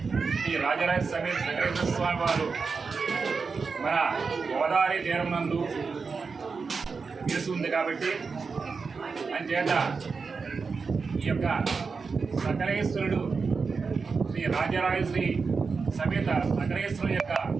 శ్రీ రాజరాజ సమేత సకలేశ్వర స్వామి వారు మన గోదావరి తీరం నందు నిలిచి ఉంది కాబట్టి అంచేత ఈ యొక్క సకలేశ్వరుడు శ్రీ రాజరాజేశ్వరి సమేత సకలేశ్వరుడు యొక్క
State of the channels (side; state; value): left; quieter; 4.9 dB